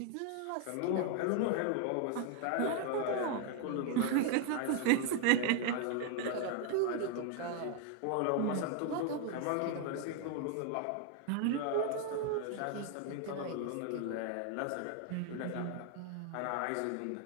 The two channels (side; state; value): both; different; correlation 0.00